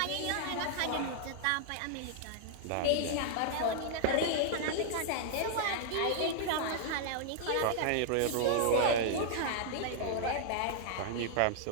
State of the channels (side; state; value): both; different; correlation -0.01